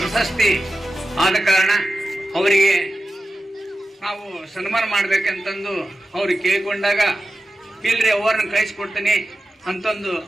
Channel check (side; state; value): both; normal; correlation 0.93